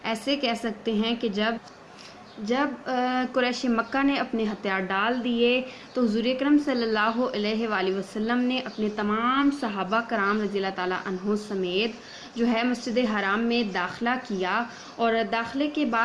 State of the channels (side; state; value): both; identical; correlation 1.00